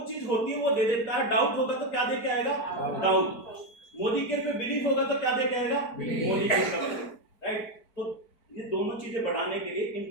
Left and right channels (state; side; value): late; right; 4.4 ms